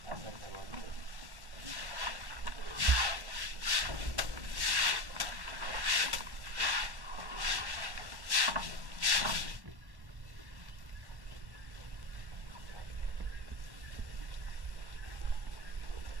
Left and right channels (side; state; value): left; late; 1.1 ms